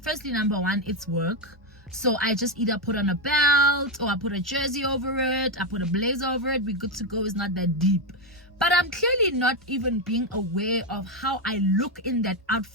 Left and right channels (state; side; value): normal; both; correlation 0.07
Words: firstly, number one, it's work. So I just either put on a belt, or I put a jersey over it, I put a blazer over it, we're good to go. It's not that deep. But I'm clearly not even being aware of how I look in that